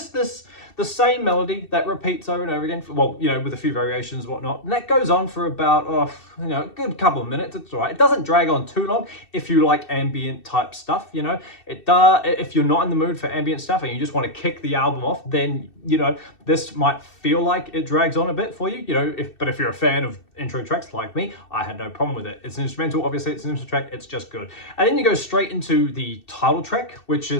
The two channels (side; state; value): right; late; 2.7 ms